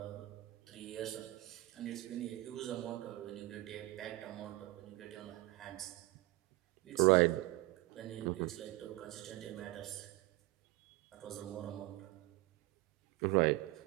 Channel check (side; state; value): left; quieter; 19.5 dB